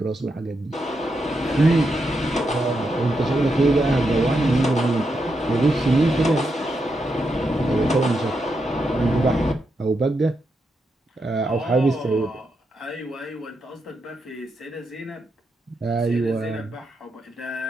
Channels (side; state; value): both; normal; correlation 0.84